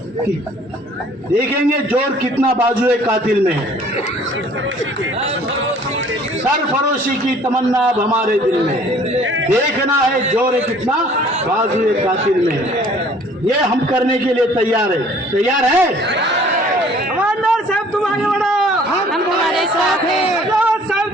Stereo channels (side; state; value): both; normal; correlation 0.54